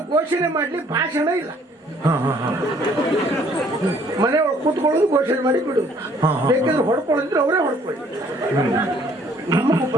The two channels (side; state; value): both; normal; correlation 0.61